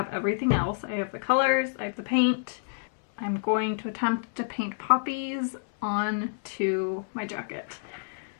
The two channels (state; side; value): silent; right; 59 dB below the other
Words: everything else. I have the colors, I have the paint. I'm going to attempt to paint poppies onto my jacket.